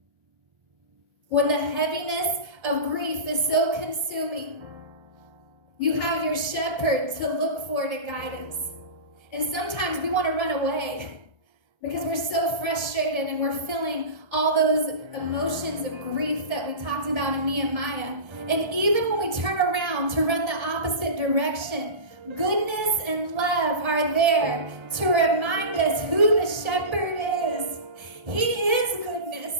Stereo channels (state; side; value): late; left; 1.3 ms